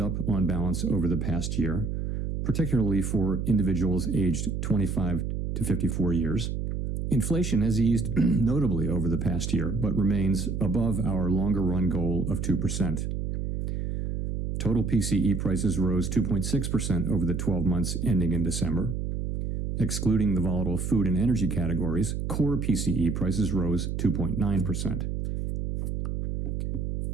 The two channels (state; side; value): noise; right; hum, 3 dB below the sound